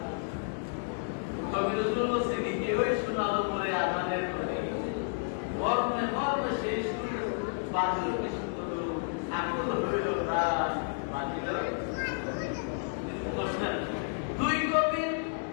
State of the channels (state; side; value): silent; right; 57 dB below the other